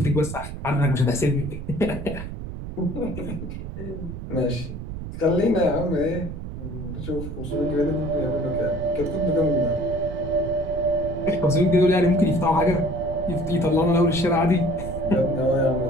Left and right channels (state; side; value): noise; right; rumble, 8 dB below the sound